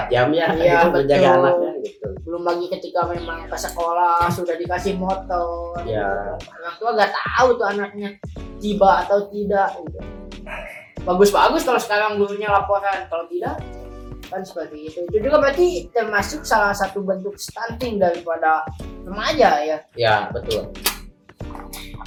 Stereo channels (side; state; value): both; identical; correlation 1.00